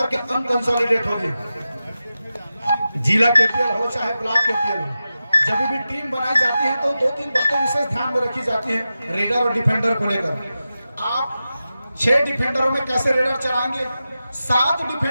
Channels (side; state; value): both; inverted; correlation -0.92